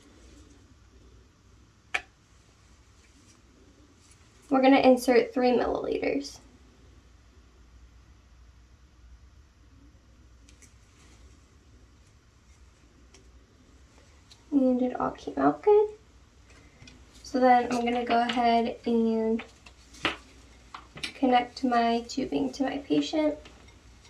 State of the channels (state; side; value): identical; both; correlation 1.00